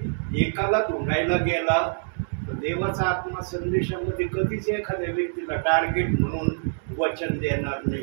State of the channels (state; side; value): silent; left; digital silence